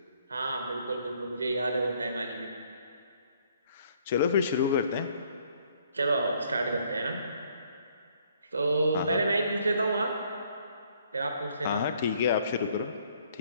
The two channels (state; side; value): inverted; both; correlation -0.64